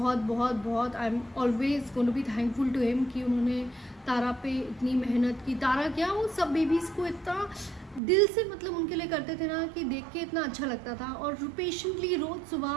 I am always going to be thankful to him कि उन्होंने तारा पे इतनी मेहनत की. तारा क्या, वो सब बेबीज़ को इतना दिल से मतलब उनके लिए करते थे ना, कि देख के इतना अच्छा लगता था. और पेशेंटली रोज़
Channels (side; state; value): left; drops out; at 8.0 s